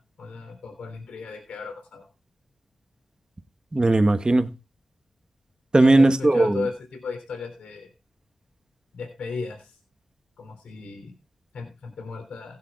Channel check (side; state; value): both; normal; correlation 0.96